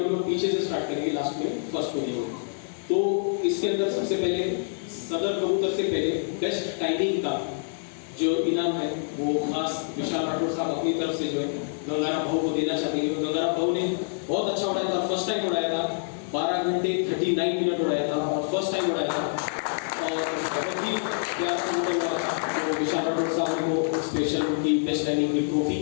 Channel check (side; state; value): right; silent; digital silence